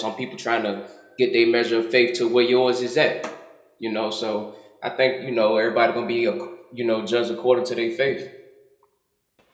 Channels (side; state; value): both; identical; correlation 1.00